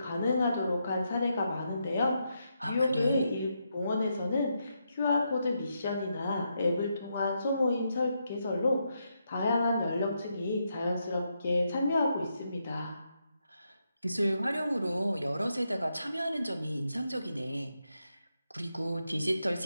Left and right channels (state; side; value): inverted; both; correlation -0.82